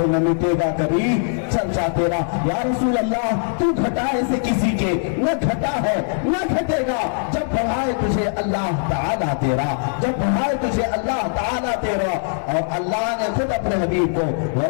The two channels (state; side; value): silent; right; 65 dB below the other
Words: نہ مٹے گا کبھی چرچا تیرا۔ یا رسول اللہ تو گھٹائے سے کسی کے نہ گھٹا ہے نہ گھٹے گا، جب بڑھائے تجھے اللہ تعالیٰ تیرا، جب بڑھائے تجھے اللہ تعالیٰ تیرا۔ اور اللہ نے خود اپنے حبیب کو